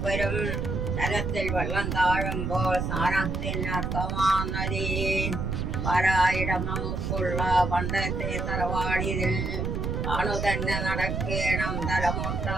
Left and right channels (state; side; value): noise; right; rumble, 1 dB below the sound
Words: വരും തലത്തിൽ വെള്ളം താഴുമ്പോൾ സ്ഥാനത്തിനർത്ഥമാനദി പാരായിടം നമുക്കുള്ള പണ്ടത്തെ തറവാടിതിൽ താണു തന്നെ നടക്കേണം